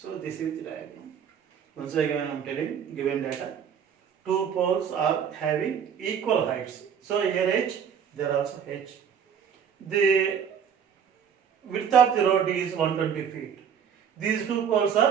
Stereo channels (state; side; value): quieter; left; 7.7 dB